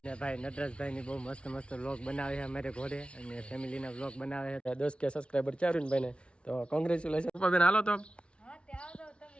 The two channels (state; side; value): late; right; 0.059 ms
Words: ને ભાઈ નટરાજભાઈ ની બહુ મસ્ત મસ્ત વ્લોગ બનાવે છે અમારે ઘોડે અને ફેમિલી ના વ્લોગ બનાવે છે 10K સબસ્ક્રાઇબર છે અરવિંદભાઈ ને તો કોંગ્રેચ્યુલેશન પપ્પા બેન હાલો તો